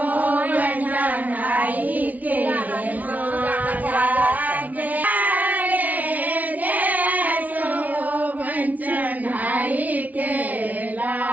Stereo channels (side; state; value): left; late; 0.073 ms